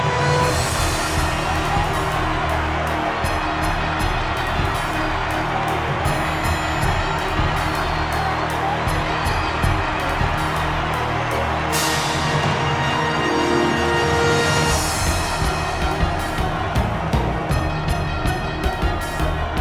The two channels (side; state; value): both; identical; correlation 1.00